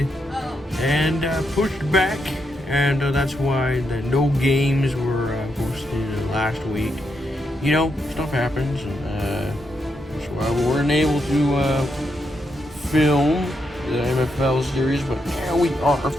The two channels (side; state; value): both; normal; correlation 0.82